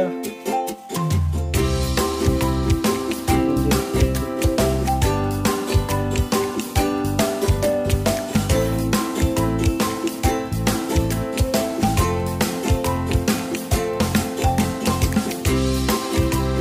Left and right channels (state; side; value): identical; both; correlation 1.00